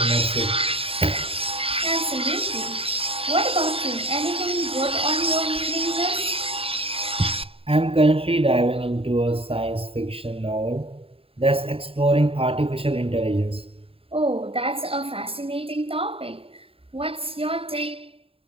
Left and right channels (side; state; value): left; late; 0.27 ms